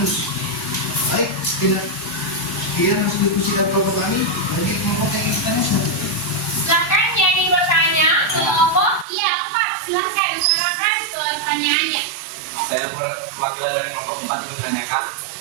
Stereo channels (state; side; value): drops out; left; at 9.1 s